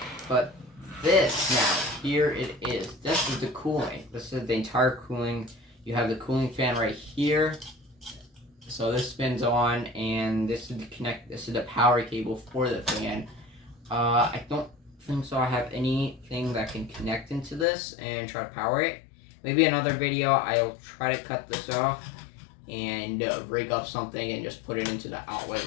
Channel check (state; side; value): drops out; right; at 17.7 s